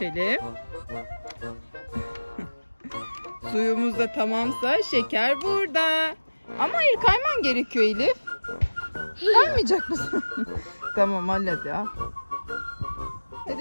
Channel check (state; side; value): inverted; both; correlation -1.00